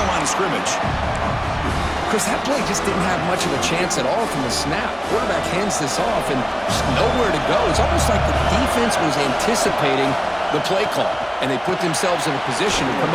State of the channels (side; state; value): both; identical; correlation 1.00